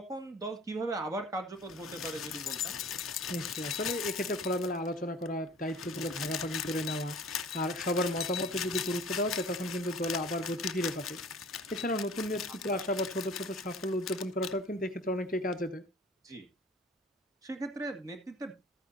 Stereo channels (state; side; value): normal; both; correlation 0.45